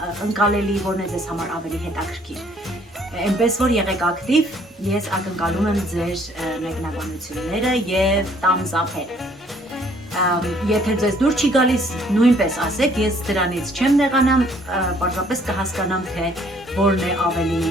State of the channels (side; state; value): both; normal; correlation 0.62